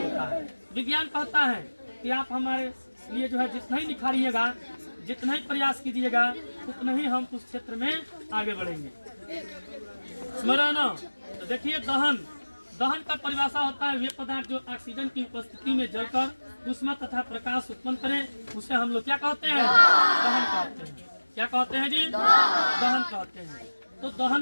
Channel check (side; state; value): both; inverted; correlation -1.00